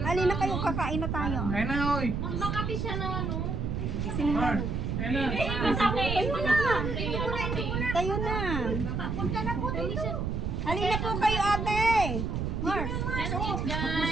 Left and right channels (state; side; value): noise; right; rumble, 1 dB below the sound